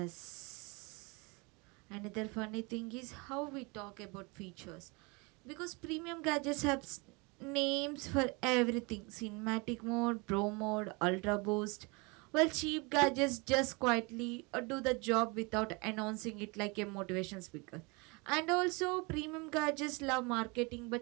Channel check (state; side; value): quieter; left; 28.5 dB